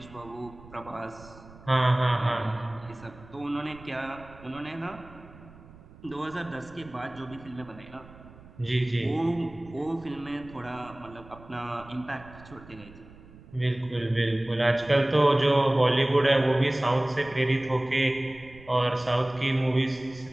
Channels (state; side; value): noise; right; rumble, 21 dB below the sound